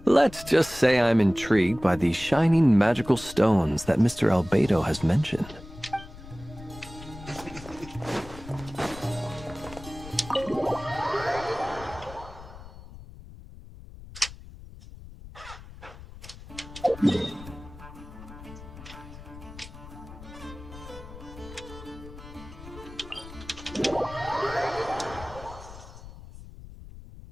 Let's just say I'm intrigued by these shining magical stones that Mr. Albedo has mentioned.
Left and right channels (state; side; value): noise; left; rumble, 16 dB below the sound